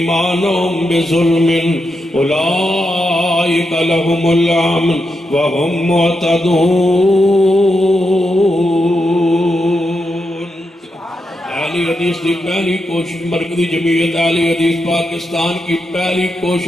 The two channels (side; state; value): both; normal; correlation 0.85